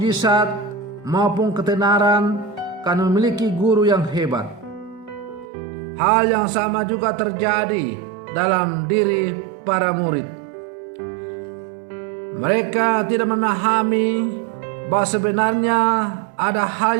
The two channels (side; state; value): left; drops out; at 5.5 s